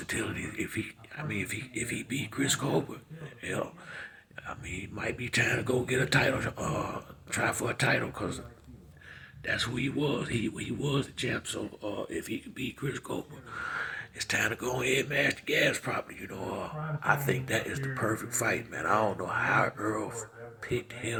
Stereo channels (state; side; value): identical; both; correlation 1.00